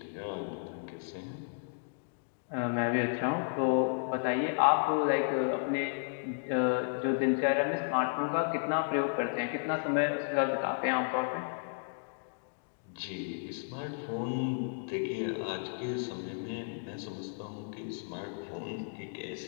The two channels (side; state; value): right; silent; digital silence